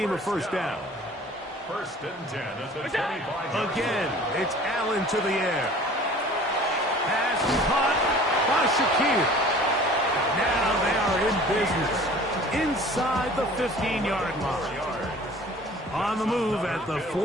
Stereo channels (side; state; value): both; normal; correlation 0.47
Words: a first down. First and 10 at the 25. Again, it's Allen to the air. Pass caught by Shakir. Now they are in business. Inside the 15-yard line. On the move at the